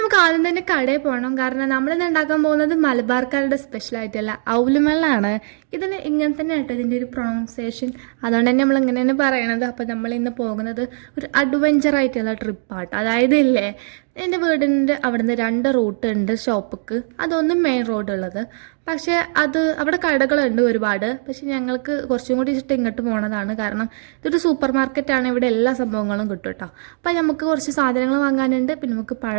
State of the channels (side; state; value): left; silent; digital silence